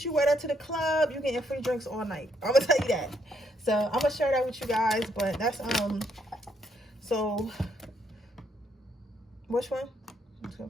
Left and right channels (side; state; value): both; normal; correlation 0.73